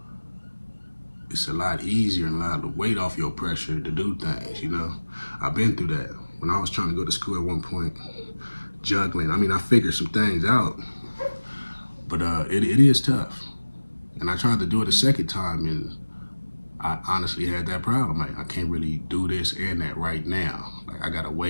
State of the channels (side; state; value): both; inverted; correlation -1.00